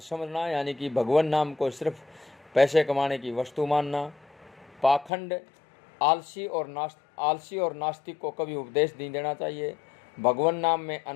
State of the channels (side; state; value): right; drops out; at 5.1 s